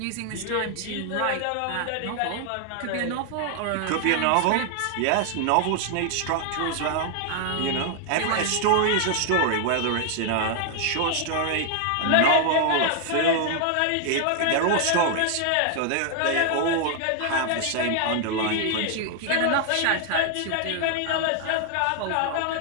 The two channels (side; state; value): both; different; correlation 0.00